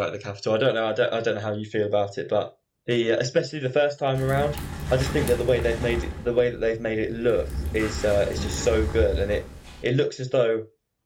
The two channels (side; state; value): both; identical; correlation 1.00